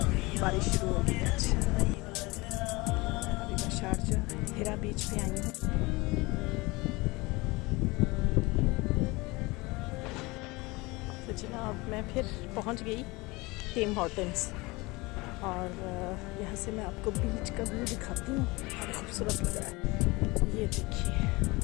बारिश शुरू हो गई आज। अभी मैं शारजा हिरा बीच पे आई हूँ। तो जनाब मैं फिर पहुँच गई टिम हॉर्टन्स और यहाँ से मैं आपको बीच का व्यू दिखाती हूँ। बड़ा खूबसूरत लग रहा है, ये देखिए।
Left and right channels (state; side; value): quieter; right; 23.5 dB